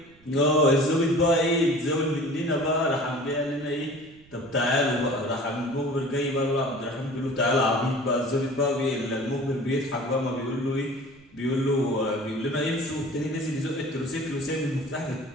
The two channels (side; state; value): right; noise; rumble, 27 dB below the sound